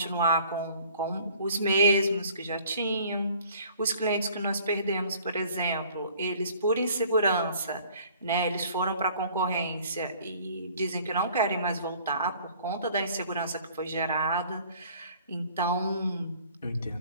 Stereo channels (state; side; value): inverted; both; correlation -0.54